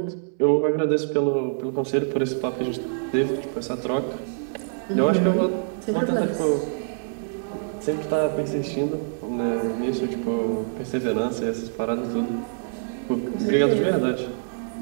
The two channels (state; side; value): silent; left; digital silence